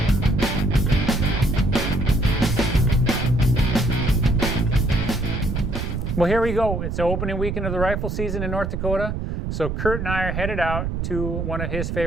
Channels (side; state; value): right; noise; rumble, 3 dB below the sound